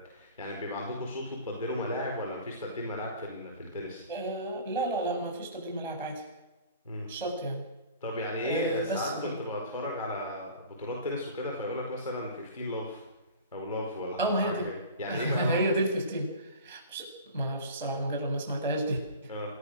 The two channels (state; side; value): inverted; both; correlation -0.42